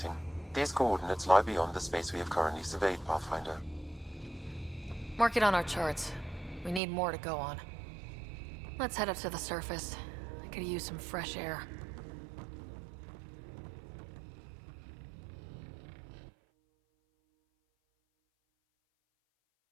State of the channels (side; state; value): left; drops out; at 6.8 s